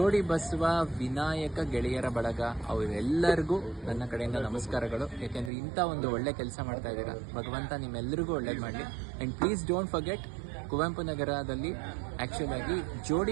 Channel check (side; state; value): left; drops out; at 5.5 s